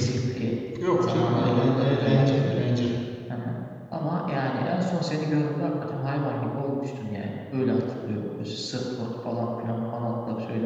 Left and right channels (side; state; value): both; identical; correlation 1.00